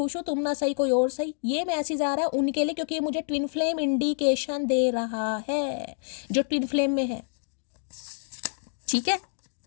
हूँ, तुम ना सही कोई और सही। ये मैसेज आ रहा है उनके लिए, क्योंकि ये मुझे ट्विन फ्लेम इंडिकेशन दे रहा है, जो ट्विन फ्लेम में है। ठीक है,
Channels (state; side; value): silent; right; digital silence